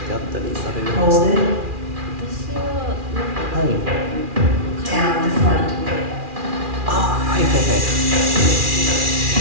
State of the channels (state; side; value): late; left; 2.4 ms